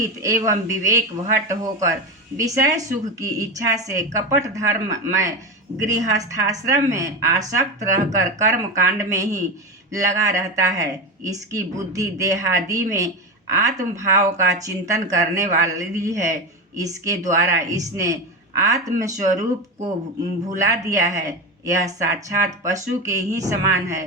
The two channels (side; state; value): both; normal; correlation 0.19